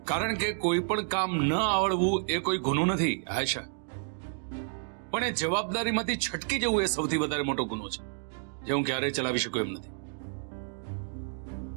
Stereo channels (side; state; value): left; silent; 58 dB below the other